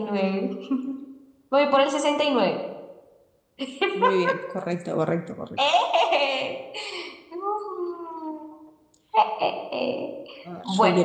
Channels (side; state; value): both; identical; correlation 1.00